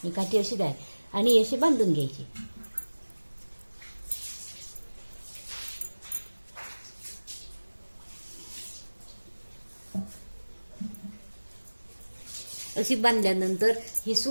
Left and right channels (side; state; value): both; inverted; correlation -1.00